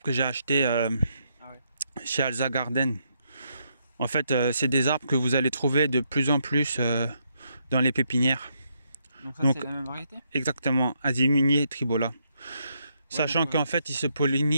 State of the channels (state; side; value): inverted; both; correlation -0.77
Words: que j'ai achetés chez Alza Garden. En fait, c'est des arbres que vous allez trouver de plus en plus dans les pépinières. Donc c'est la même variété? Exactement, Asiminier tribola. Ouais, sachant qu'en fait, ils se